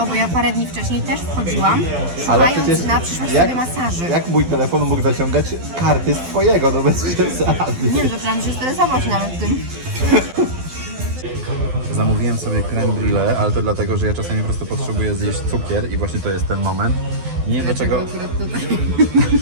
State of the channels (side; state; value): left; late; 12 ms